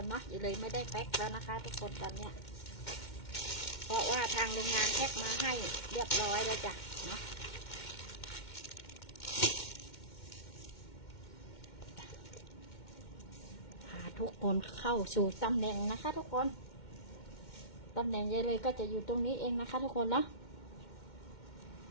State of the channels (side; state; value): right; late; 2.1 ms